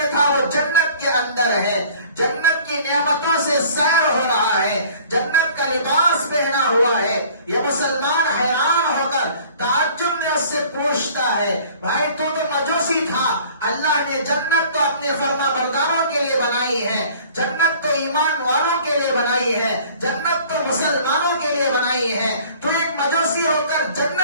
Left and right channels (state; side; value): inverted; both; correlation -0.50